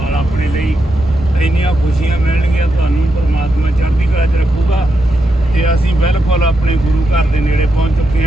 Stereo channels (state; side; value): normal; both; correlation 0.85